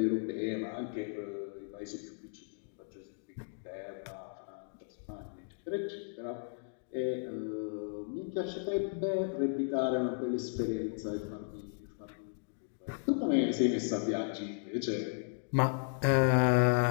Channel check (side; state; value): right; silent; digital silence